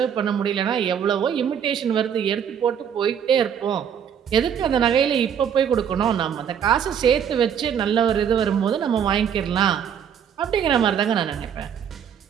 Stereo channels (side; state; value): left; quieter; 8.3 dB